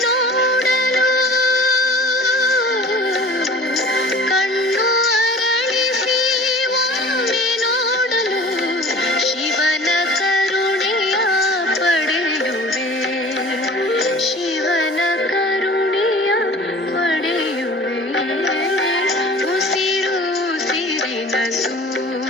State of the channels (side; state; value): both; normal; correlation 0.43